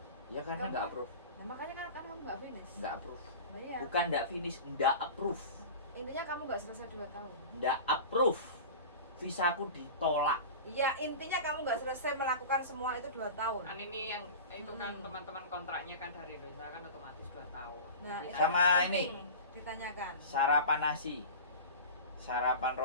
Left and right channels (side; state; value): both; inverted; correlation -0.33